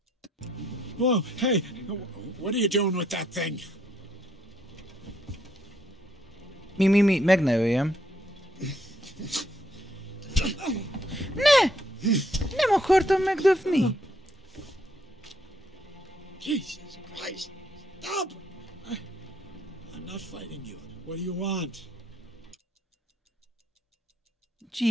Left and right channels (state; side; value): normal; both; correlation 0.71